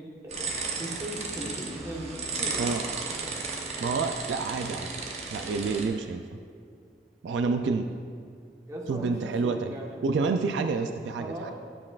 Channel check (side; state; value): left; quieter; 3.7 dB